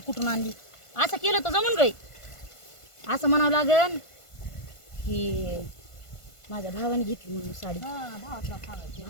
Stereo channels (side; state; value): right; late; 1.5 ms